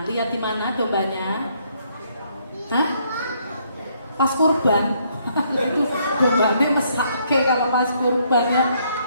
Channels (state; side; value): inverted; both; correlation -0.70